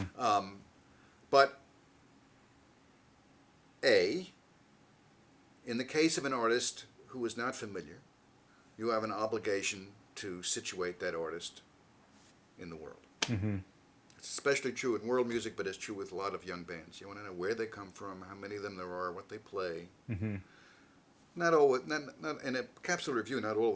But in the case of an artist who is not familiar, you have an obligation to situate that artist in the world. Mm-hmm. It's especially true in world music, but it's true with a lot of young bands. You want to know where they come from, how many of them there are, what they play. Mm-hmm. Not in a capsule review, not all of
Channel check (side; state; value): both; identical; correlation 1.00